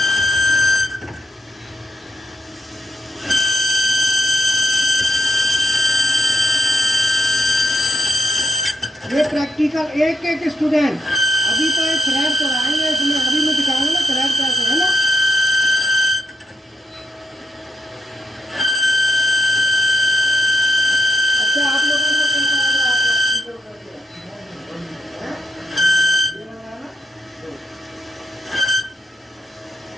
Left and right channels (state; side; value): normal; both; correlation 0.82